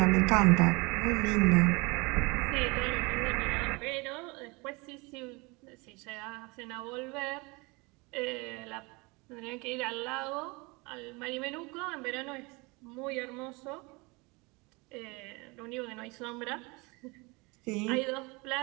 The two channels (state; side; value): quieter; left; 26.8 dB